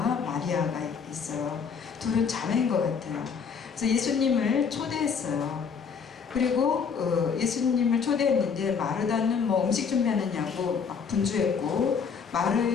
마리아가 있어요. 둘은 자매인 것 같아요. 그래서 예수님을 초대했어요. 그리고 예수님을 초대했는데 마르다는 음식 준비하느냐고 막 분주했고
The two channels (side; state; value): right; quieter; 6.2 dB